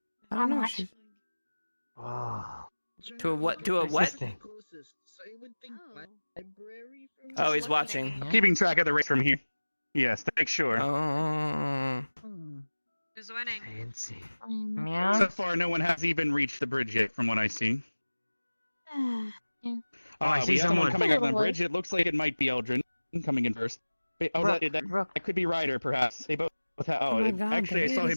I don't know. Oh. To a what? To a what? Persisting. Closest, so I would think library from Oh, he's watching. Keeping track of the race from here. Yes, to make sure. Oh. Who's winning? Fancy. So Meow. far, no one has even reached the bridge yet, from what I see. Oh, I see we have someone someone. coming up on the bridge. It looks like it might be Eldrin coming in first. Wait, oh, that could be Ryder, perhaps. They both have. Oh my God, actually, I saw him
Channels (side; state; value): both; inverted; correlation -1.00